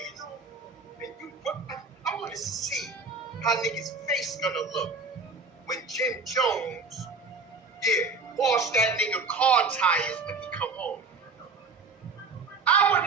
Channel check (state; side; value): quieter; left; 4.2 dB